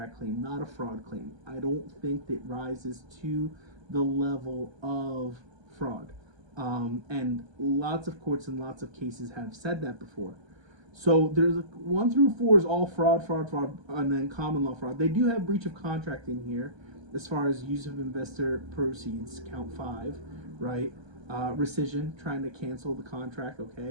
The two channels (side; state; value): left; late; 1.3 ms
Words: claim, not a fraud claim. I don't think that rises to the level of fraud. And lots of courts and lots of cases have said that before. So there's 1 through 4 is all fraud, and then common law fraud. They do have breach of contract in here as far as use of investor proceeds, count 5, right? Rescission, trying to cancel the contract,